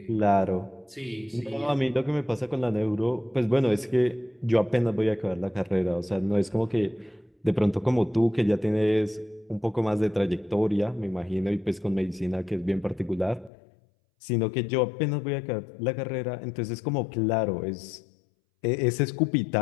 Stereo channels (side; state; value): right; drops out; at 13.5 s